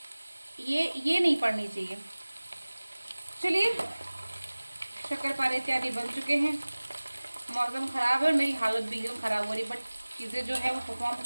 ये नहीं पड़नी चाहिए। चलिए, शक्करपारे इत्यादि बन चुके हैं। मौसम ख़राब है और मेरी हालत भी एकदम ख़राब हो रही, बट चीज़ें जो है वो परफॉर्म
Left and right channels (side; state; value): both; inverted; correlation -1.00